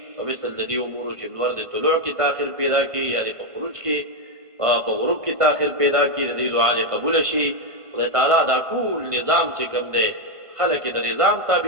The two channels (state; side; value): late; left; 1.5 ms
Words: او مثل د دې امور چې نور د طلوع کې تاخير پیدا کی یا د خروج کې په غروب کې تاخير پیدا کی د دعا قبول شي خدای تعالی دا ټول نظام چې کوم دی خلک د نظام